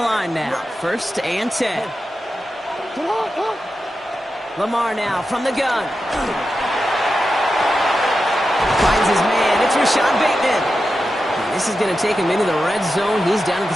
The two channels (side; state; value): both; normal; correlation 0.90